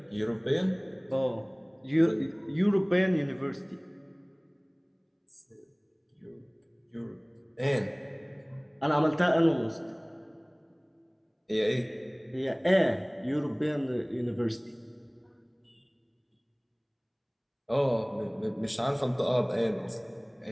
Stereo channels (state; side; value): identical; both; correlation 1.00